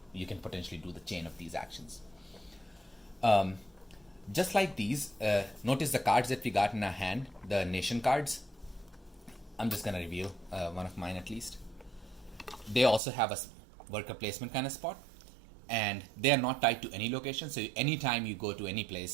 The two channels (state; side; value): drops out; left; at 13.0 s